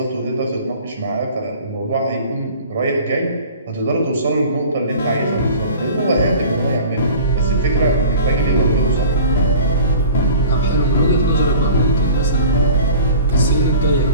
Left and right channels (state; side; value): inverted; both; correlation -0.43